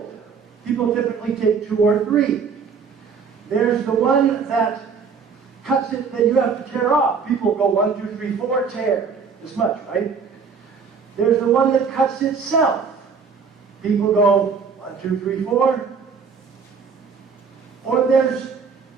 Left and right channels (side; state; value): left; quieter; 5.7 dB